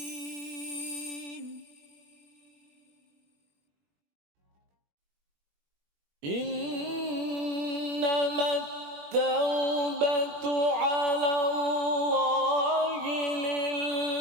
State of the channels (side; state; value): left; late; 21 ms